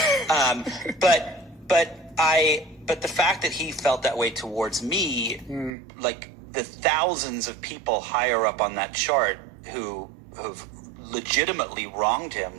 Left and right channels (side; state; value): left; drops out; at 5.7 s